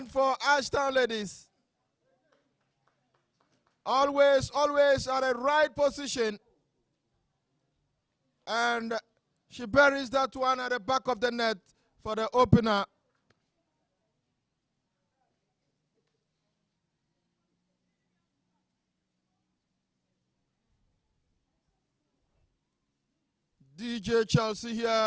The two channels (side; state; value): both; identical; correlation 1.00